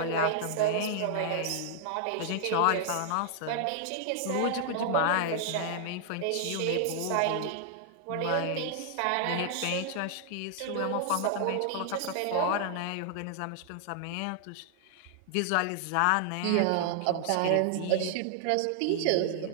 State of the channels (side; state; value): both; different; correlation 0.00